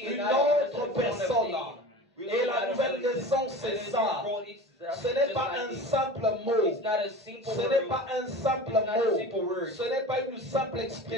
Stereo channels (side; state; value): both; normal; correlation 0.35